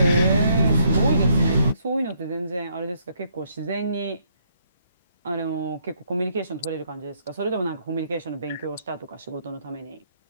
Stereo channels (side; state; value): both; inverted; correlation -0.71